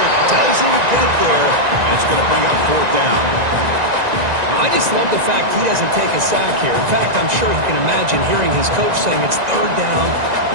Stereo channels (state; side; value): late; left; 1.9 ms